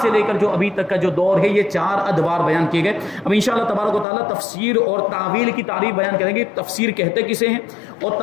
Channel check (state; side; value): drops out; right; at 4.0 s